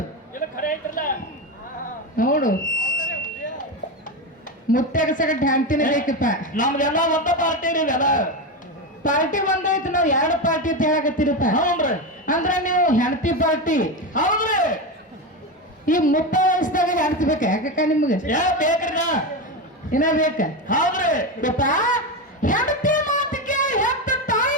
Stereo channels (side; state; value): both; normal; correlation 0.16